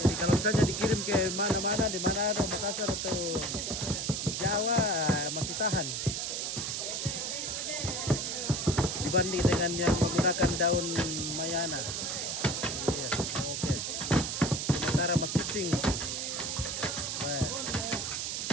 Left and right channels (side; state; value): right; noise; hiss, 2 dB below the sound